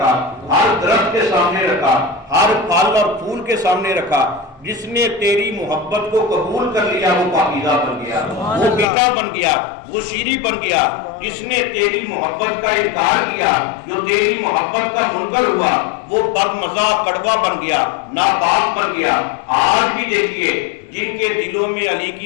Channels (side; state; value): right; drops out; at 8.8 s